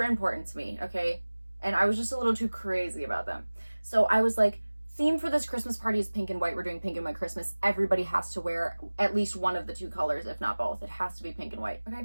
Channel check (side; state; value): both; inverted; correlation -1.00